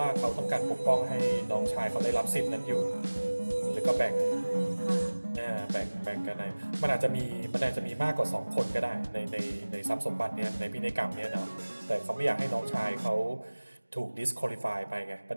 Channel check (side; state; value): both; inverted; correlation -1.00